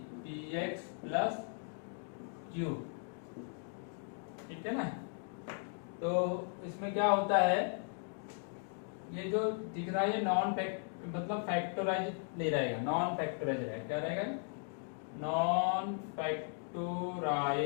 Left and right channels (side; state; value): right; silent; 53 dB below the other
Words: p x plus q. ठीक है ना। तो इसमें क्या होता है, ये जो दिख रहा है ये नॉन फैक्ट मतलब फैक्टराइज नहीं रहेगा, नॉन फैक्टराइज रहेगा। क्या रहेगा? नॉन